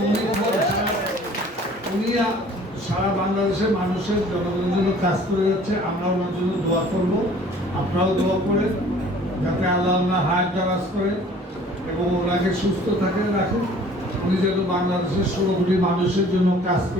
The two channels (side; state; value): both; normal; correlation 0.51